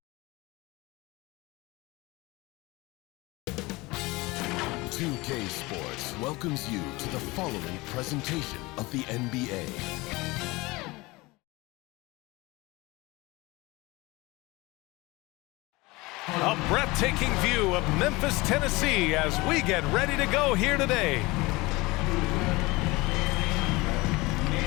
2K Sports welcomes you to the following presentation of the NBA. A breathtaking view of Memphis, Tennessee as we get ready to go here today.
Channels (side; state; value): right; quieter; 22.5 dB